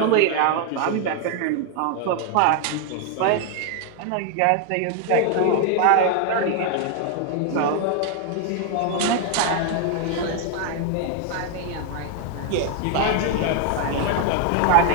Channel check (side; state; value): both; different; correlation 0.00